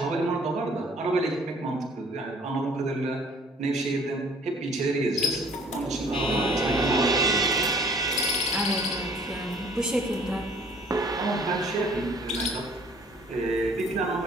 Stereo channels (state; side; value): normal; both; correlation 0.55